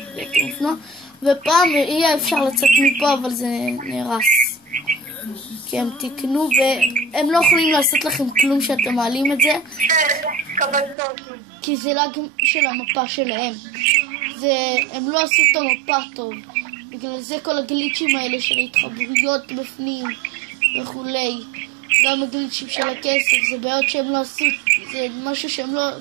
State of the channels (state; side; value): drops out; left; at 11.0 s